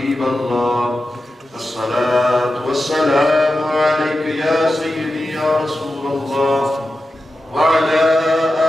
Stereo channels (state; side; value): normal; both; correlation 0.92